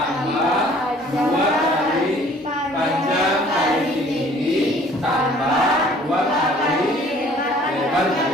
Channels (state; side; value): normal; both; correlation 0.54